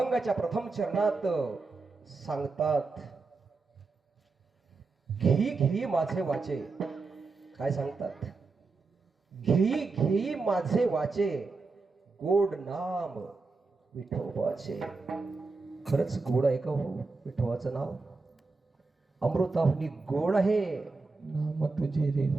प्रथम चरणात सांगतात, घेई घेई माझे वाचे. काय सांगतात? घेई घेई माझे वाचे, गोड नाम विठोबाचे. खरंच गोड आहे का हो विठोबाचं नाव? अमृताहुनी गोड आहे नाम तुझे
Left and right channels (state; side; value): quieter; left; 4.0 dB